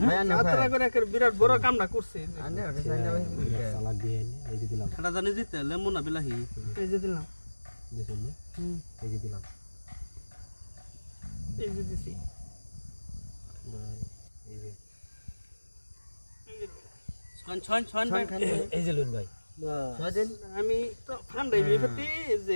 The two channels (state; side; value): inverted; both; correlation -1.00